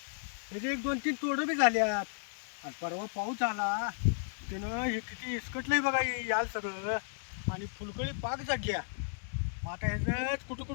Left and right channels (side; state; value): right; silent; digital silence